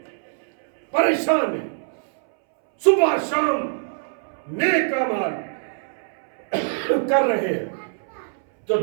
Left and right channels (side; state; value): left; silent; 63 dB below the other